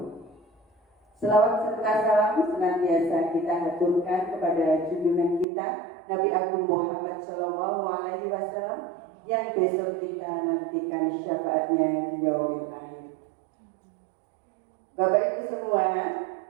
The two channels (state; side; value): drops out; left; at 5.5 s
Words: Selawat serta salam senantiasa kita haturkan kepada junjungan kita Nabi Agung Muhammad SAW, yang besok kita nantikan syafaatnya di yaumil akhir. Bapak Ibu semua,